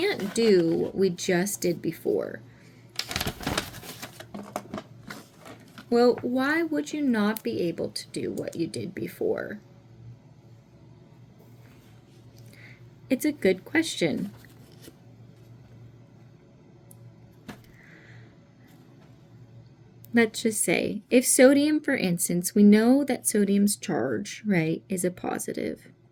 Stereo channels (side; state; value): both; identical; correlation 1.00